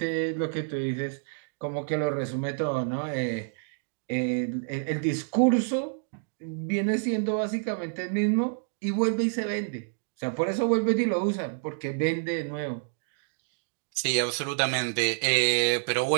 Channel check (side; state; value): left; silent; digital silence